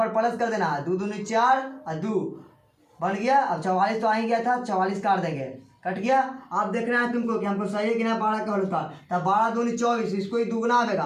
प्लस कर देना 2 दूनी 4 और 2 बन गया। अब 44 तो आ ही गया था, 44 काट देंगे, कट गया। आप देखना है तुमको कि हमको सही है कि नहीं 12 का होल स्क्वायर। तब 12 दूनी 24, इसको ही दुगना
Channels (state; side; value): identical; both; correlation 1.00